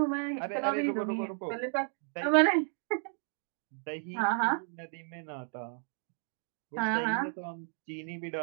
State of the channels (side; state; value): left; silent; 56 dB below the other